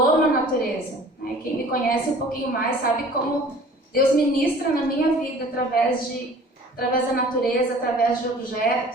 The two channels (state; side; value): normal; both; correlation 0.48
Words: amo a natureza. Né? Quem me conhece um pouquinho mais sabe como Deus ministra na minha vida através da natureza, através de